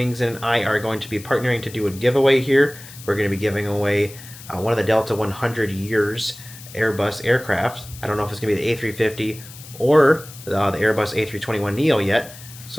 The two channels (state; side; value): noise; left; hiss, 17 dB below the sound